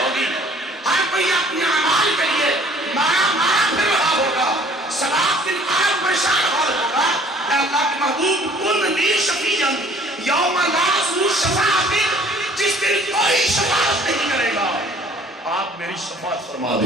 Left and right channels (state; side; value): normal; both; correlation 0.55